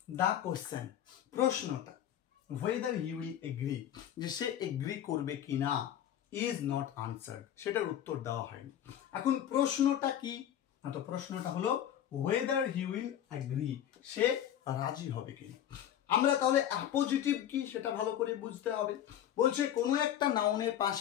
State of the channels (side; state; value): right; quieter; 10.7 dB